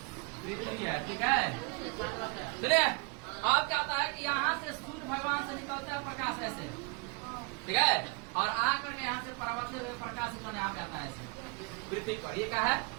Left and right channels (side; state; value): left; quieter; 31.3 dB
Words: पृथ्वी है। ठीक है, चलिए। अब क्या होता है कि यहाँ से सूर्य भगवान से निकलता है प्रकाश ऐसे। ठीक है, और आकर के यहाँ से परावर्तित हुए प्रकाश यहाँ पे आता है ऐसे पृथ्वी पर। ये क्या है?